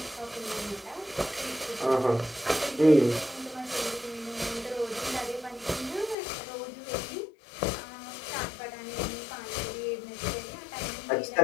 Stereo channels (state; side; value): drops out; right; at 6.2 s